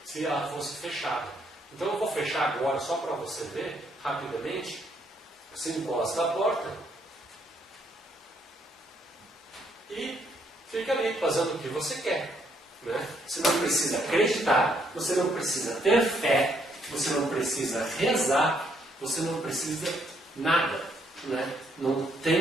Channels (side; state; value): both; normal; correlation 0.71